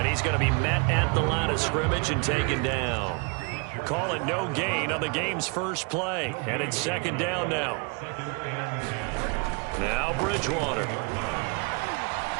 he's going to be met at the line of scrimmage and taken down. Call it no gain on the game's first play. And it's second down now. Now Bridgewater.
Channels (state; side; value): quieter; left; 32.9 dB